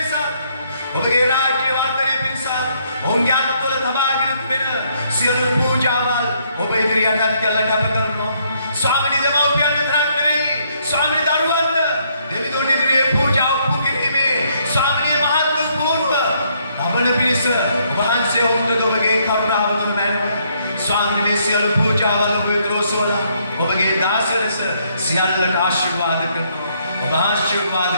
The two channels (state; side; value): inverted; both; correlation -0.70